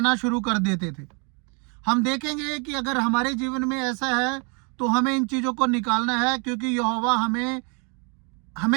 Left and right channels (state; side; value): quieter; left; 35.2 dB